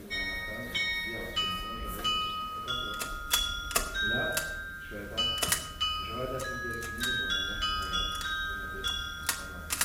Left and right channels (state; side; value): identical; both; correlation 1.00